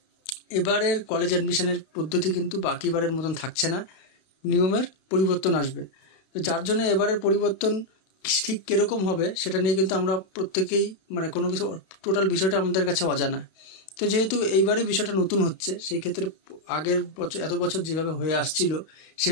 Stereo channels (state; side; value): late; right; 32 ms